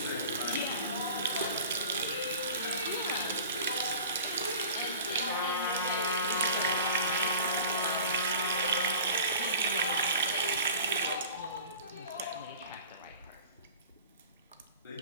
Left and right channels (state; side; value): inverted; both; correlation -0.41